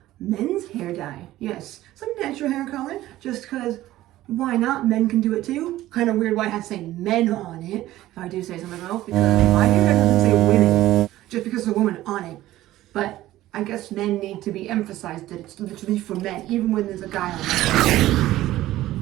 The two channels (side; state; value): left; quieter; 15.3 dB